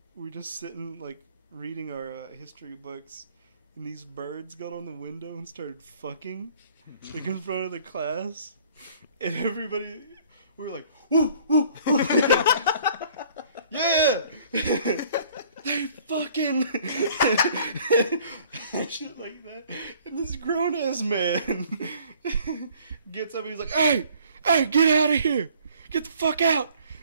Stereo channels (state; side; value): inverted; both; correlation -0.56